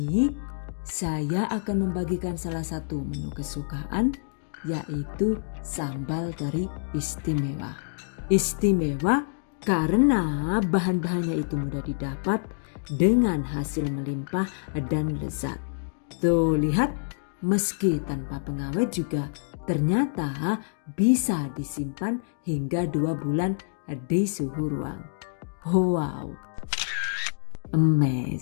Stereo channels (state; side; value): silent; right; digital silence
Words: saya akan membagikan salah satu menu kesukaan, yaitu sambal teri istimewa. Istimewa karena bahan-bahannya itu mudah didapat dengan hasil melimpah dan lezat. Tuh lihat, meski tanpa pengawet juga ternyata bisa disimpan hingga 2 bulan di suhu ruang. Wow,